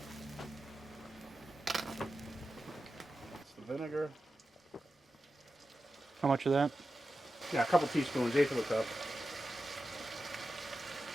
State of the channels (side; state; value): both; normal; correlation 0.92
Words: It's the vinegar. How much of that? Yeah, a couple teaspoons, eighth of a cup.